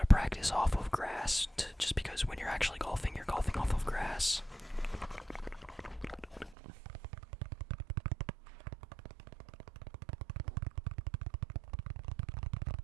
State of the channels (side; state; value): left; drops out; at 6.6 s